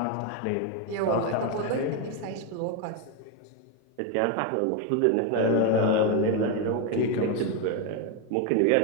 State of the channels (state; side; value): different; both; correlation 0.02